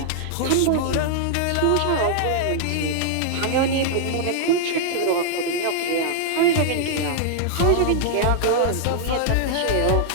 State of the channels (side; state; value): both; different; correlation -0.01